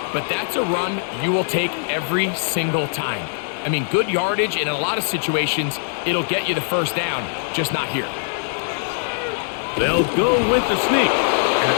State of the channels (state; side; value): silent; right; 62 dB below the other